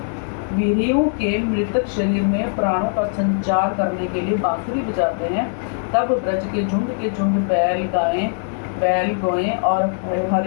वीरियों के मृतक शरीर में प्राणों का संचार करने के लिए बांसुरी बजाते हैं, तब ब्रज के झुंड बैल गोएं और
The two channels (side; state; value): right; silent; digital silence